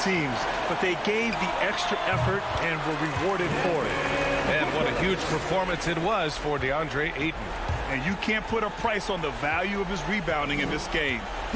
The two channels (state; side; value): identical; both; correlation 1.00